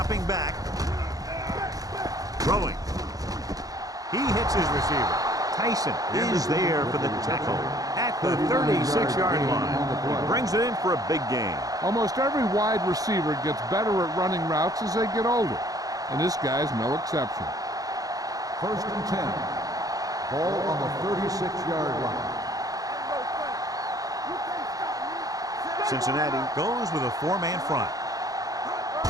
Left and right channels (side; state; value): left; late; 0.17 ms